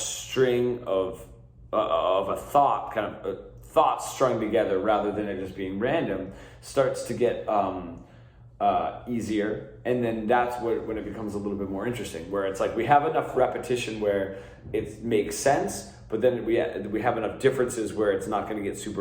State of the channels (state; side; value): identical; both; correlation 1.00